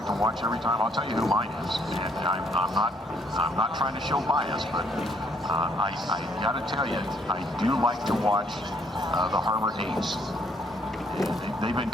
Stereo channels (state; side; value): normal; both; correlation 0.67